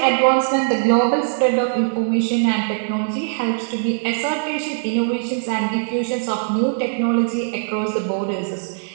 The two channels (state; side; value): silent; left; digital silence